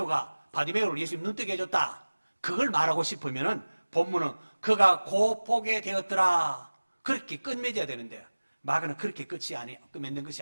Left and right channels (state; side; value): inverted; both; correlation -1.00